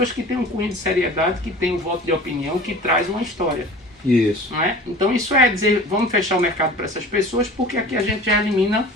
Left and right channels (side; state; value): both; normal; correlation 0.41